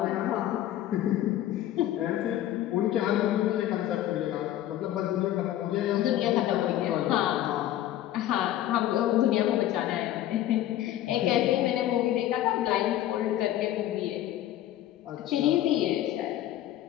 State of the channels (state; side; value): quieter; right; 12.9 dB